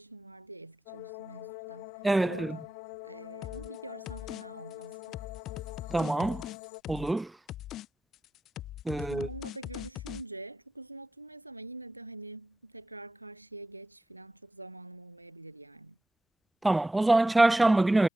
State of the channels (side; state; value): both; normal; correlation 0.91